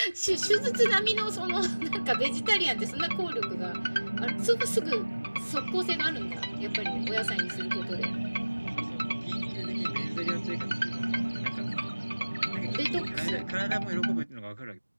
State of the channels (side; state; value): both; inverted; correlation -1.00